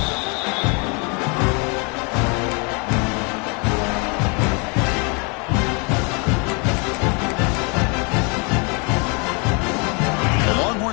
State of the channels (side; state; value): right; quieter; 32.9 dB